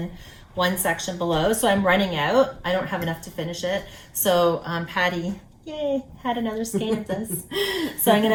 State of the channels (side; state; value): both; identical; correlation 1.00